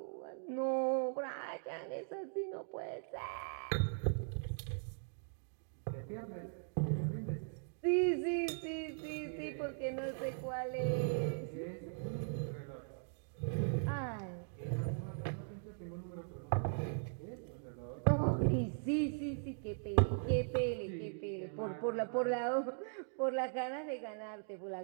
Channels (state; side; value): silent; left; digital silence